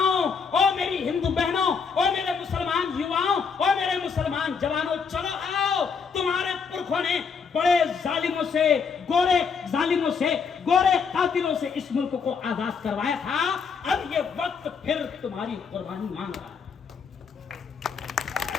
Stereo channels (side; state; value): right; quieter; 5.8 dB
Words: ओ मेरी हिंदू बहनों, ओ मेरे मुसलमान युवाओं, ओ मेरे मुसलमान जवानों, चलो आओ। तुम्हारे पुरखों ने बड़े जालिमों से, गोरे कातिलों से इस मुल्क को आजाद करवाया था। अब ये वक्त फिर तुम्हारी कुर्बानी मांग रहा है,